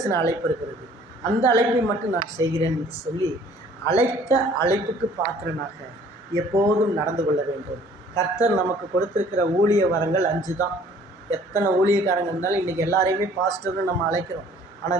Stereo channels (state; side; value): normal; both; correlation 0.55